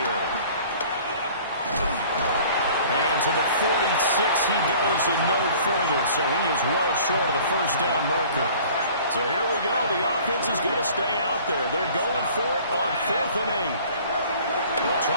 And to the 46 he goes and no further. So he is well short of the first down marker. So here we go. The offense is going to stay out there. They're going for it on 4th and 8. They'll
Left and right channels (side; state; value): both; inverted; correlation -0.50